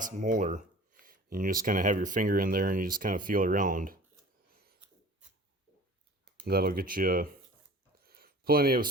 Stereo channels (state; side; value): normal; both; correlation 0.44